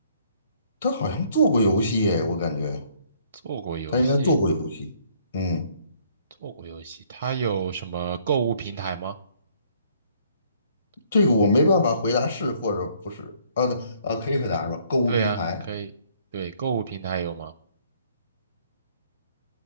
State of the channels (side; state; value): both; inverted; correlation -0.63